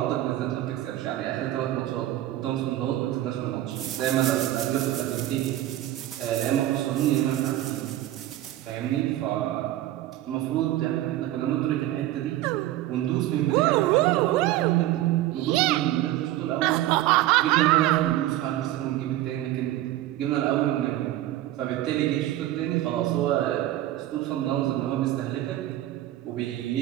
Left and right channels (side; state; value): left; quieter; 14.5 dB